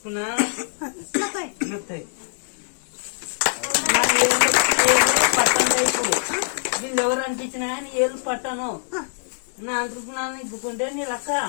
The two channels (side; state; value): right; silent; digital silence